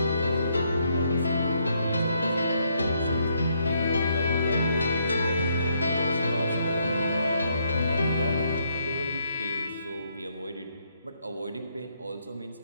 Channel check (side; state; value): both; inverted; correlation -0.73